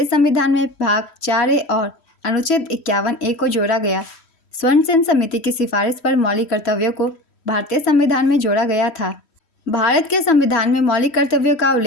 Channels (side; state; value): right; late; 3.1 ms